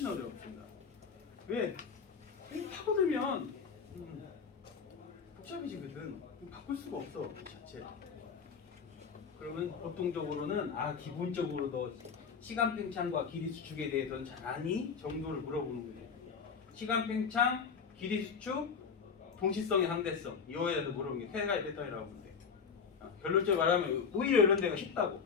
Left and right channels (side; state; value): right; quieter; 6.1 dB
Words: 어렵습니다. 왜? 파고들면 복잡해지거든. 바꿀 수가 없어 그 자체. 그러면 보통적으로는 기본적으로 너 시간 팽창과 길이 수축에 대해서는 잘 아니? 정도를 물어보는 거예요. 시간 팽창, 길이 수축, 동시성의 상대성 이거에 대해서 물어보는 게 세 가지 패턴이라고 보면 돼. 결론적으로 말하면 오히려 이런 데가 쉽다고.